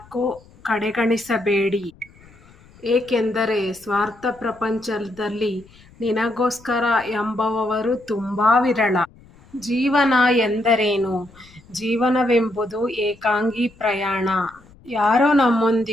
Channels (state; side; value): noise; left; rumble, 26 dB below the sound